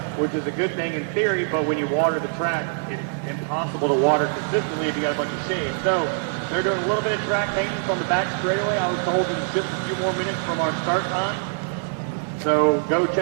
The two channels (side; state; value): left; silent; digital silence